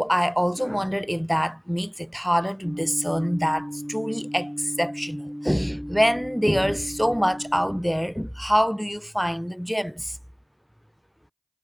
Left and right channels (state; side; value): identical; both; correlation 1.00